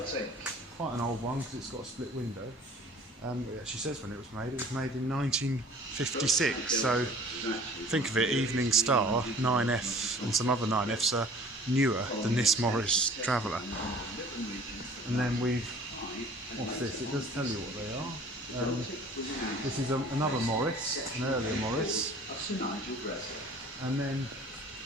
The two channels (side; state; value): both; normal; correlation 0.49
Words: quite an old one because it's got a split window. It actually says when it was made. It was made in 1956, so think of it, Evening Star, 9F and some other 9Fs are newer than this Morris Traveller. And then what's this? It does tell you what they are. This is another Morris, an earlier Morris. And then